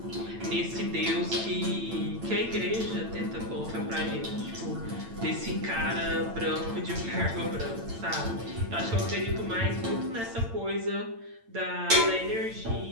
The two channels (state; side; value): late; left; 8.9 ms